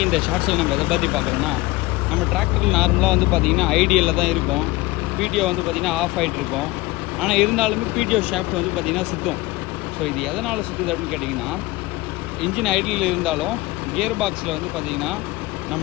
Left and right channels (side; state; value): right; quieter; 20.8 dB